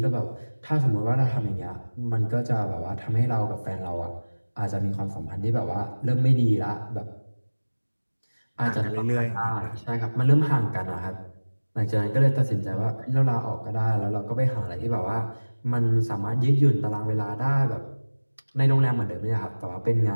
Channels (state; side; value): inverted; both; correlation -1.00